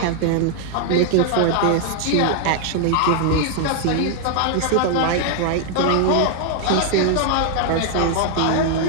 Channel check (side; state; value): both; different; correlation 0.00